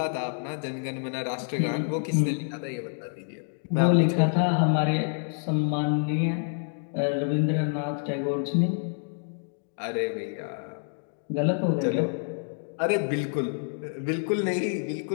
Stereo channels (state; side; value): silent; right; digital silence